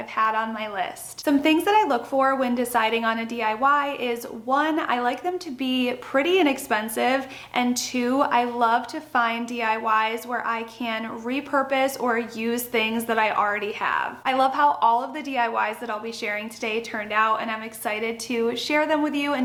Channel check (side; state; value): both; identical; correlation 1.00